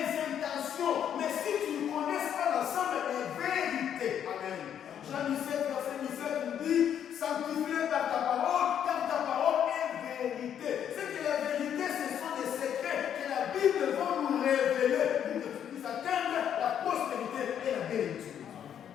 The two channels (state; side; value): quieter; right; 9.2 dB